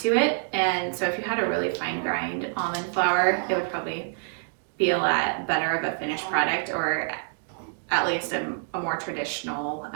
to it, and so if you had a really fine grind almond flour, it would probably be a lot better of a finished product, or at least a more traditional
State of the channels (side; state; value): left; silent; 60 dB below the other